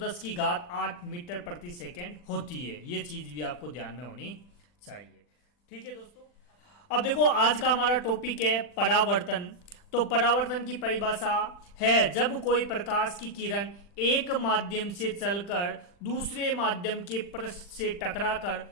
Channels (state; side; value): late; right; 40 ms